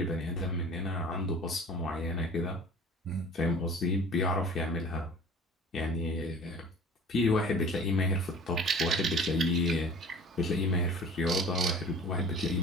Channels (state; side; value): normal; both; correlation 0.45